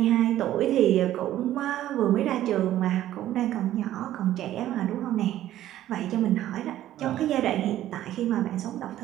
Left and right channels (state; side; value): quieter; left; 13.1 dB